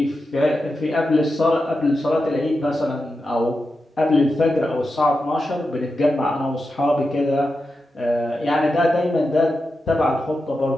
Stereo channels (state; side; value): normal; both; correlation 0.89